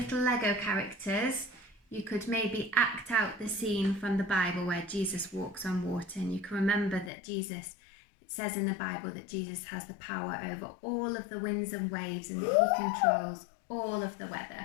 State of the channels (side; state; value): right; drops out; at 7.1 s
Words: Lego characters, you could maybe act out the scene from the Bible where Jesus walks on water, and you can remember that Jesus, it says in the Bible that Jesus has the power over all of the winds and waves and that he controls all of the